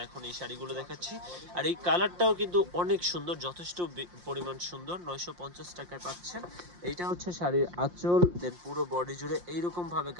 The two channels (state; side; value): late; left; 5.7 ms